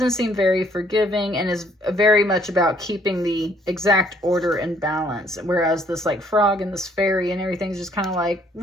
seem very forgiving and is very much about keeping the exact order and balance, whereas this like frog and this fairy and everything's just kind of like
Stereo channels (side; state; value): both; normal; correlation 0.64